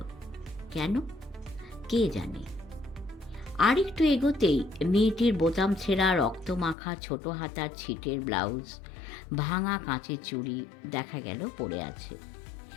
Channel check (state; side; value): drops out; right; at 6.8 s